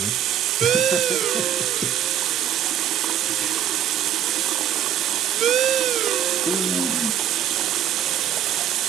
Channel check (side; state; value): left; quieter; 10.2 dB